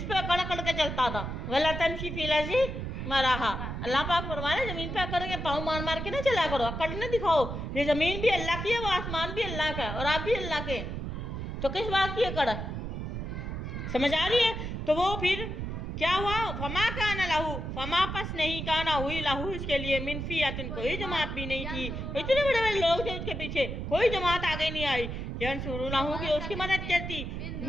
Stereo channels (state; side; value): noise; right; rumble, 5 dB below the sound